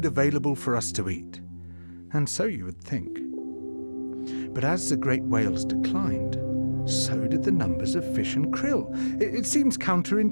available for us to eat. And so you would think. But as the great whales declined, so did the numbers of fish and krill. It seems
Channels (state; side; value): inverted; both; correlation -1.00